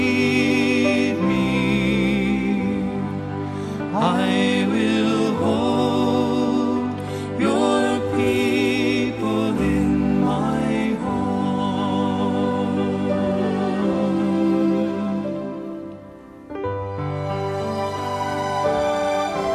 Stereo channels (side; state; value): both; identical; correlation 1.00